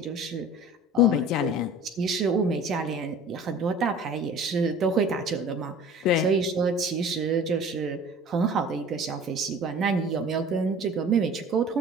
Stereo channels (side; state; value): both; normal; correlation 0.44